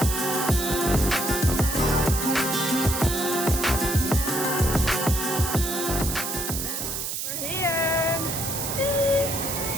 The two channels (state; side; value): noise; right; hiss, 3 dB below the sound